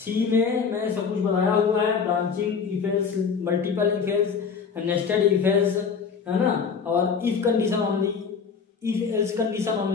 में मैंने सब कुछ बताया हुआ है, branching, if else, multiple if else, nested if else, है ना। और if condition only, if else condition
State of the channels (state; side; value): quieter; right; 5.9 dB